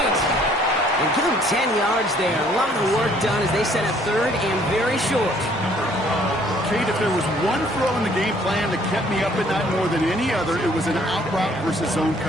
And give him 10 yards there. A lot of work done as they set up third and very short. Kate, if there was one throw in the game plan that kept me up at night more than any other, it was an out route versus zone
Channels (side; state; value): both; normal; correlation 0.61